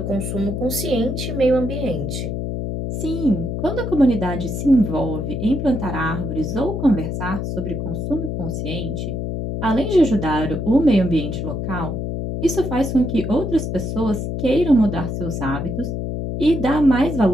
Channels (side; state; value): left; noise; hum, 3 dB below the sound